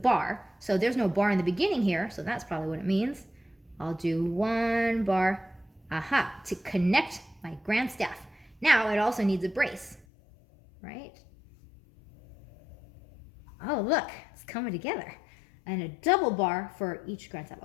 so there's no bar in the beginning here, so that's probably what it means. I'll do one bar, to connect my grand staff. Now it also needs a brace, right? Oh, look, it's coming together. And a double bar for each grand staff.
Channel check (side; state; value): right; drops out; at 10.1 s